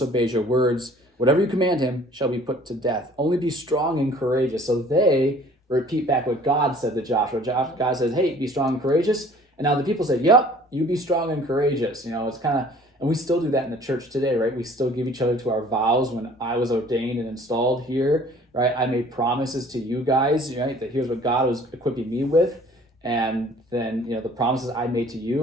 your words, whatever you command him shall be put to death. Only be strong and courageous. So they repeat back what God said to Joshua. God says, hey, be strong and courageous. And now the people say, yep, you be strong and courageous. It's kind of, and we still do that in the church today, right? We still give each other to our vows. When I was ordained and installed here, right, I made promises to you guys, right, that here's what God was equipping me with. And then, the promises I made to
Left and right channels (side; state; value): both; normal; correlation 0.52